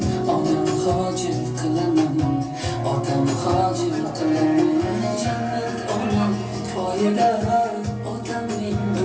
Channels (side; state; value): both; identical; correlation 1.00